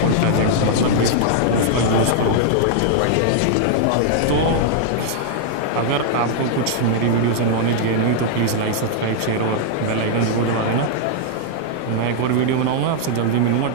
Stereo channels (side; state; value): both; different; correlation -0.01